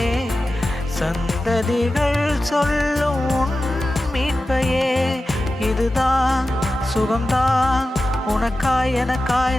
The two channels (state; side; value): normal; both; correlation 0.94